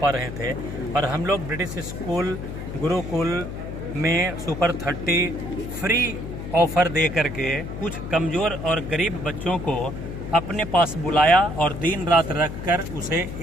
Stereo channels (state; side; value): noise; left; hum, 8 dB below the sound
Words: रहे थे और हम लोग ब्रिटिश स्कूल गुरुकुल में सुपर 30 फ्री ऑफर दे करके कुछ कमज़ोर और गरीब बच्चों को अपने पास बुलाया और दिन रात रखकर उसे